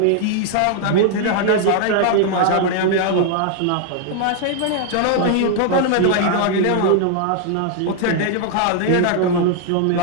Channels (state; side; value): different; both; correlation 0.00